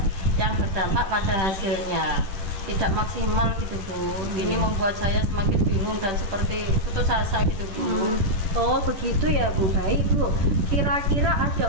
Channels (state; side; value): late; left; 10 ms